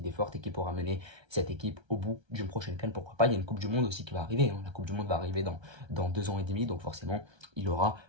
fortes et qui pourra mener cette équipe au bout d'une prochaine CAN, pourquoi pas. Il y a une Coupe du Monde aussi qui va arriver, hein. La Coupe du Monde va arriver dans 2 ans et demi, donc forcément, il aura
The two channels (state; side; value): late; left; 1.3 ms